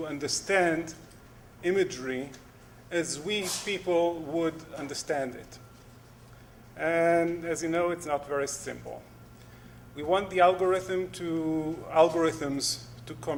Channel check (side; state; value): both; identical; correlation 1.00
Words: understand imagery as we people would understand it. And as you know, it's not very simple. We want the algorithms to